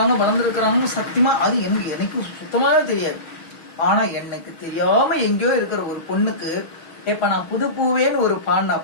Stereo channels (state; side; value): late; right; 6.3 ms